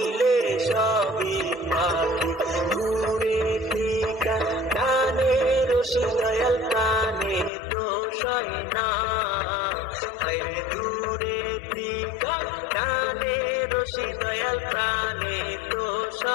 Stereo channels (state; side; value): drops out; right; at 7.5 s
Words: সবই পাখি ঘুরে টিকা কানে রশি দয়াল কানে দোষ হয় না হায়রে দূরে টিকা কানে রশি দয়াল কানে দোষ